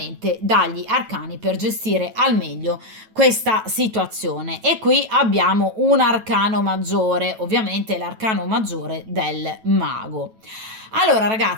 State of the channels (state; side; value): late; left; 9.2 ms